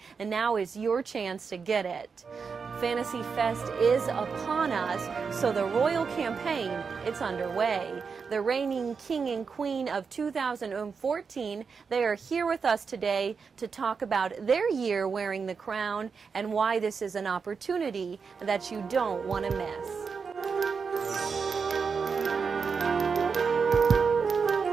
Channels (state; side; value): quieter; left; 5.5 dB